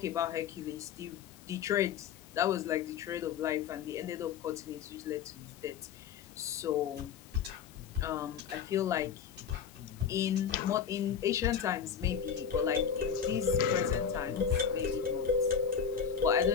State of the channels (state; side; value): quieter; right; 7.5 dB